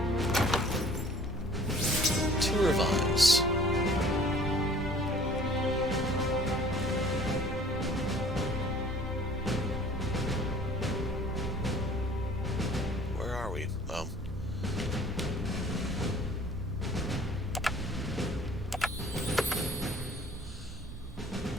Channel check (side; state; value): right; noise; rumble, 14 dB below the sound